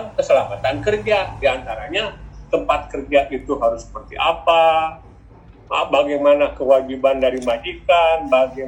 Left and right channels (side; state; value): both; identical; correlation 1.00